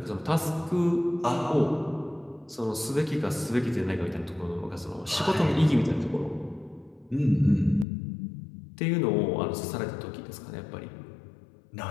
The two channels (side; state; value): right; drops out; at 7.9 s